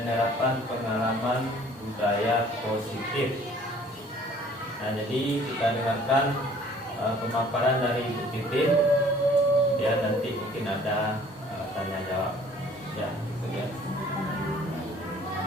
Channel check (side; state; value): both; normal; correlation 0.54